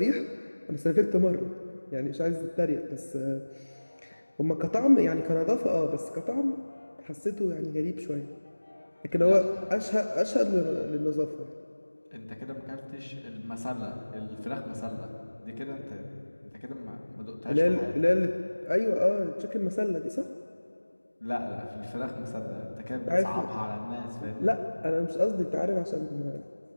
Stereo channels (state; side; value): inverted; both; correlation -1.00